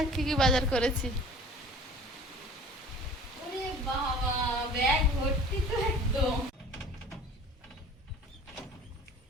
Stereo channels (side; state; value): both; normal; correlation 0.45